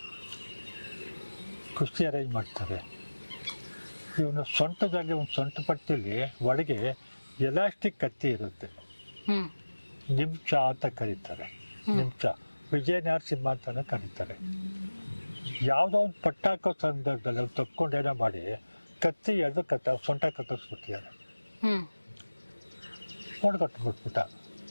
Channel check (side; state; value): both; inverted; correlation -1.00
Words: ಕುಸ್ತಿ ಅರೇಂಜ್ ಮಾಡ್ತಾರೆ. ಇವನು ಸೊಂಟದಲ್ಲಿ ಒಂದು ಸೊಂಟ ಪಟ್ಟಿಲಿ ಒಳಗೆ ಎಲಾಸ್ಟಿಕ್ ಕತ್ತಿ ಇರುತ್ತೆ. ನಿಮ್ಚ ಅಂತ ಕರೀತಾರೆ. ನಿಮ್ಚ ವಿಜಯ ನರಸಿಂಹ ಅಂತಾನೆ ಕರೀತಾರೆ. ಯಾವುದೋ ಒಂದು ಪಟ್ಟಾಕೋ ಸಂದರ್ಭದಲ್ಲಿ ಅವ್ರು ತಪ್ಕೊಂಡೇನೋ ಮಾಡಿ ಕತ್ತಿ ಎಳೆದು ಸೊಂಟ ಕತ್ತಿಸ್ಬಿಟ್ಟಿದ್ದಾರೆ. ಹೊಡ್ಕೊಟ್ಬಿಟ್ಬಿಟ್ಟ.